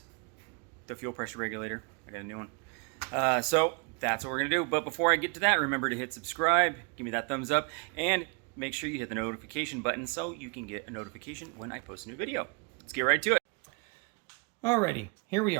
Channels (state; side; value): quieter; left; 33.3 dB